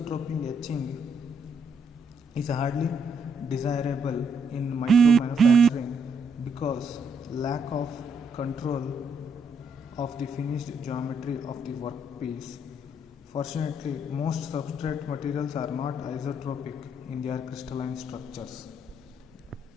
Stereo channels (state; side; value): normal; both; correlation 0.74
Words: etching is hardly desirable in micro manufacturing because lack of control of the finished geometry of the workpiece. Fortunately, most substrate materials are not isotropic in their crystalline structures.